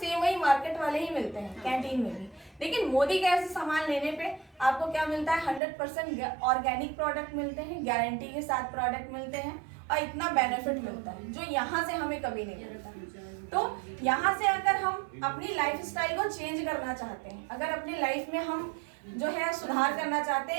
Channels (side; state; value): left; drops out; at 5.6 s